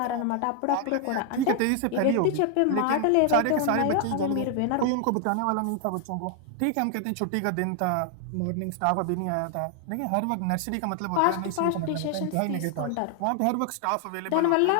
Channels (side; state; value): both; different; correlation 0.00